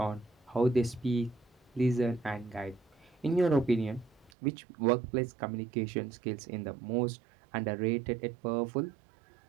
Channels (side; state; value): left; drops out; at 4.3 s